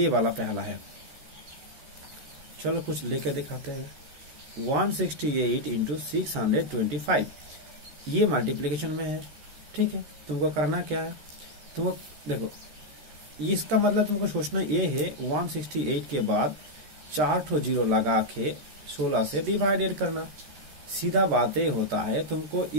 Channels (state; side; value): late; left; 13 ms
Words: वाला पहला है, चलो कुछ लेके दिखाते हैं। 168 इंटू 625 ये मल्टीप्लीकेशन में है, ठीक है। तुमको करना क्या है, तुमको देखो इसका मतलब तुमको सोचना ये है 168 के बाद 4 ठो जीरो लगा के 16 से डिवाइडेड करना। सीधा बात ये होता है, तुमको